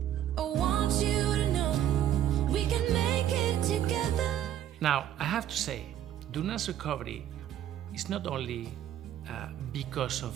I want you to know we can make Now, I have to say, Duna's recovery is not only because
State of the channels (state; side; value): quieter; left; 11.2 dB